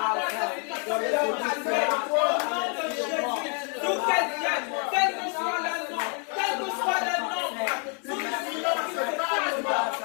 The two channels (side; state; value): right; quieter; 39.0 dB